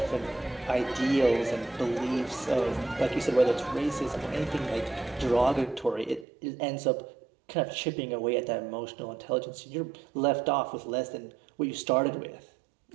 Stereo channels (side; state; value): left; drops out; at 6.2 s